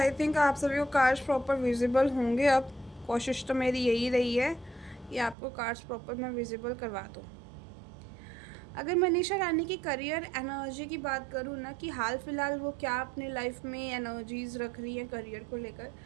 थिंक आप सभी को कार्ड्स प्रॉपर विजिबल होंगे। अब कोशिश तो मेरी यही रही है कि आपको कार्ड्स प्रॉपर मैं विजिबल करवा दूँ। अगर मनीषा रानी की करियर एनर्जी की बात करूँ ना, कि हाल फिलहाल वो क्या अपने लाइफ में एनर्जीज रख रही है करियर को लेकर,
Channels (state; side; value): drops out; left; at 5.4 s